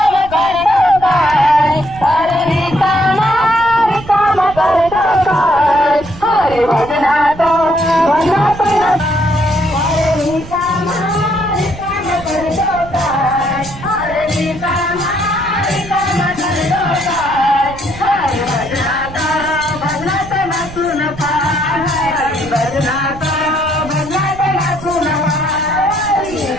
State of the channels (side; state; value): right; noise; rumble, 15 dB below the sound